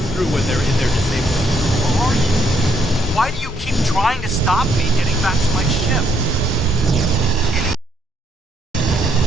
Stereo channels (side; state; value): both; normal; correlation 0.72